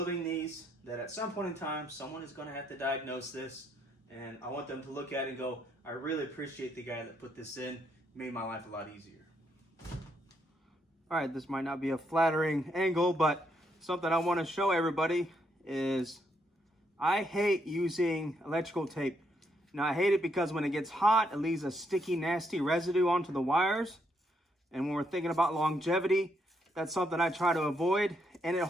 these that at some point in time, someone is going to have to diagnose this. And I want them to look at it and go, I really appreciate the guy that put this in. It made my life a lot easier. All right, this might not be a flattering angle, but something I want to show everybody is I hate using electrical tape. Now, I hate it because when it gets hot, it leaves a sticky, nasty residue onto the wires. And when we're thinking about longevity, that's something I try to avoid. And it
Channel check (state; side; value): normal; both; correlation 0.76